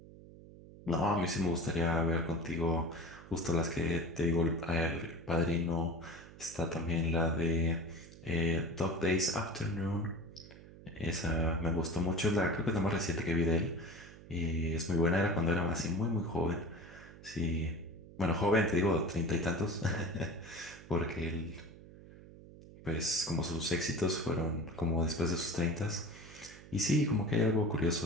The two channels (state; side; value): noise; right; hum, 18 dB below the sound